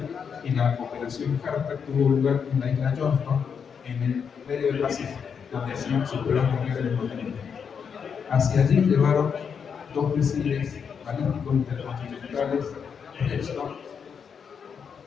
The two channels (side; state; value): right; quieter; 6.7 dB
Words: y la operación Hartak tuvo lugar en la isla Johnston, en el medio del Pacífico, donde hacían sus pruebas nucleares los norteamericanos. Hacia allí llevaron 2 misiles balísticos intercontinentales Redstone.